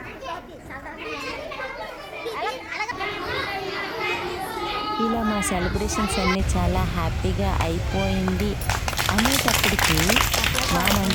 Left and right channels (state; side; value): identical; both; correlation 1.00